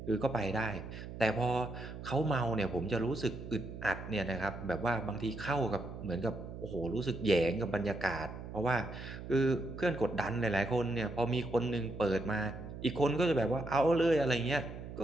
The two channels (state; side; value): noise; right; hum, 10 dB below the sound